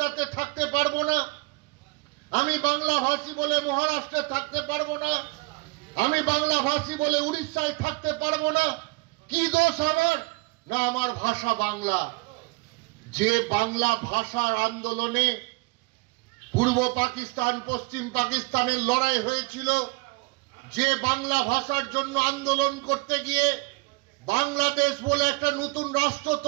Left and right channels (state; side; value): quieter; left; 25.1 dB